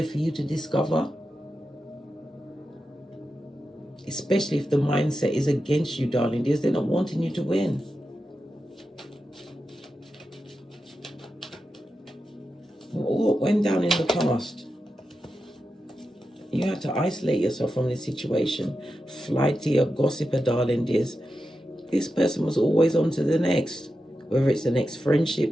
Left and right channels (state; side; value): normal; both; correlation 0.90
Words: for you to discover. Especially if the mindset is against you, darling dears. They're not wanting you to win. What went down in the past? You had to isolate yourself from this situation. Flighty or gossiper, darling dears. This person was always on to the next. Whether it's the next